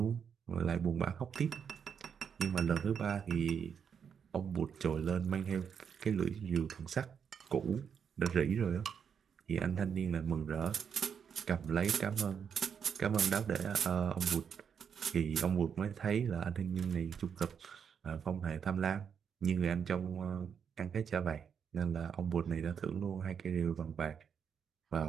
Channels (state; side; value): quieter; left; 7.2 dB